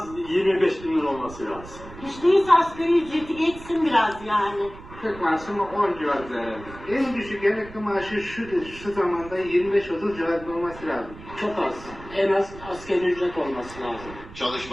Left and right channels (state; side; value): noise; right; rumble, 16 dB below the sound